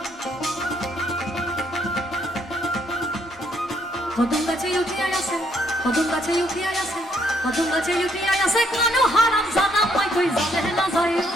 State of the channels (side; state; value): both; normal; correlation 0.71